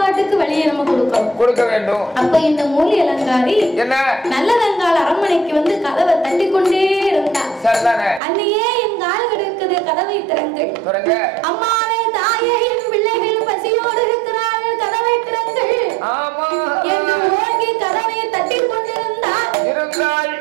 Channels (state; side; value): drops out; left; at 8.2 s